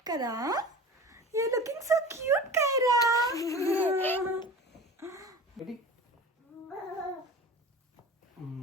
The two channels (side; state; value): both; normal; correlation 0.36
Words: కదా. You looking so cute Kaira.